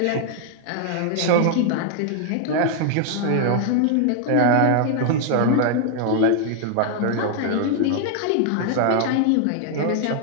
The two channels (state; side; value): different; both; correlation 0.00